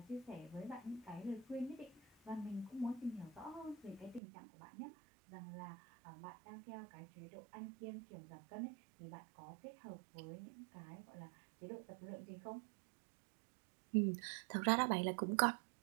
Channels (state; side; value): drops out; left; at 4.2 s